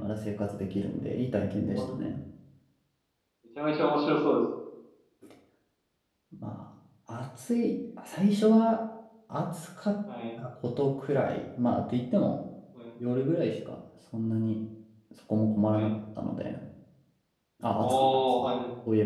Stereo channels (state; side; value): identical; both; correlation 1.00